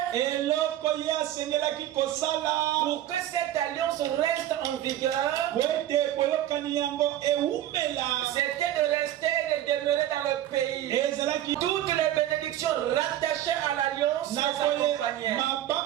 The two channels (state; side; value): quieter; left; 12.6 dB